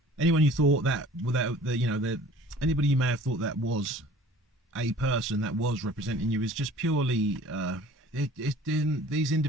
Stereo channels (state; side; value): normal; both; correlation 0.48